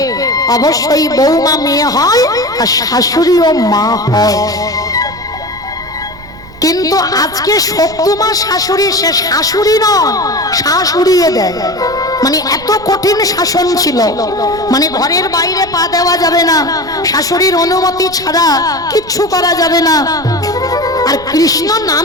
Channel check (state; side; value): noise; right; rumble, 19 dB below the sound